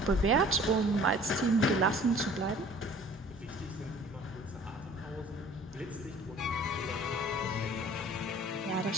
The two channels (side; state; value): both; normal; correlation 0.50